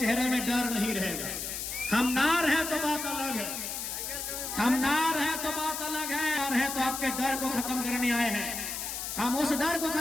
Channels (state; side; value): noise; left; hiss, 5 dB below the sound